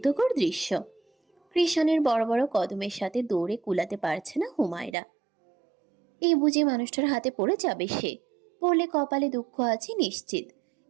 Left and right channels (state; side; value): drops out; left; at 5.0 s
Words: দৃশ্য! কৃষাণের বড় বড় কদমের সাথে দৌড়ে কুলাতে পারছে না হুমায়রা। এই বুঝি মানুষটার হাতে পড়ে যাবে সে। পড়লে কপালে দুঃখ আছে নিশ্চিত।